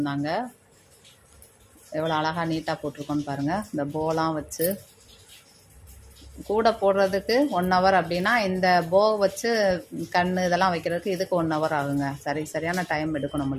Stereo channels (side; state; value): both; identical; correlation 1.00